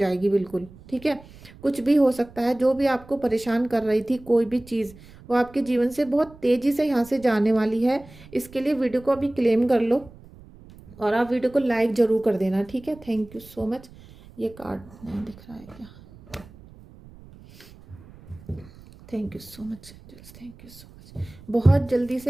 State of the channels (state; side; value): noise; right; rumble, 21 dB below the sound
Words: बिल्कुल, ठीक है। कुछ भी हो सकता है, जो भी आपको परेशान कर रही थी कोई भी चीज़, वो आपके जीवन से बहुत तेज़ी से यहाँ से जाने वाली है। इसके लिए वीडियो को अभी क्लेम कर लो और आप वीडियो को लाइक ज़रूर कर देना, ठीक है। Thank you so much. ये कार्ड नहीं दिख रहा है क्या? Thank you so much angels, thank you so much. बहुत जल्दी